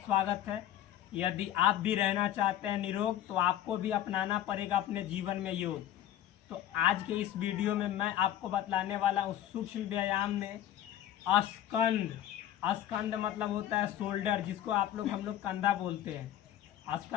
है। यदि आप भी रहना चाहते हैं निरोग तो आपको भी अपनाना पड़ेगा अपने जीवन में योग। तो आज के इस वीडियो में मैं आपको बतलाने वाला हूँ सूक्ष्म व्यायाम में स्कंद। स्कंद मतलब होता है शोल्डर, जिसको हम लोग कंधा बोलते हैं।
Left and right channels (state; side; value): quieter; right; 11.6 dB